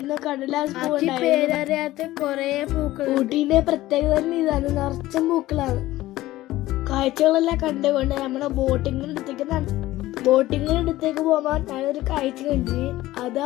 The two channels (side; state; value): right; quieter; 16.4 dB